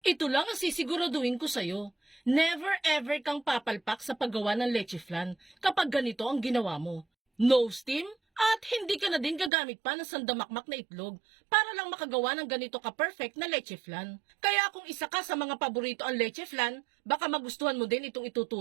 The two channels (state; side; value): drops out; left; at 9.5 s